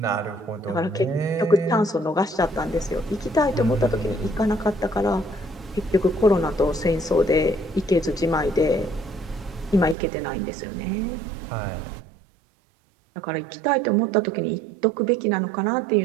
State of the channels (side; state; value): left; drops out; at 10.0 s